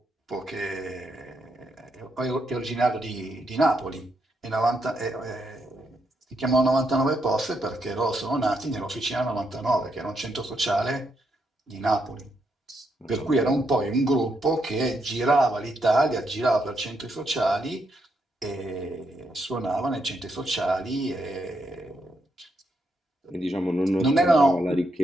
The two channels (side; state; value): both; normal; correlation 0.79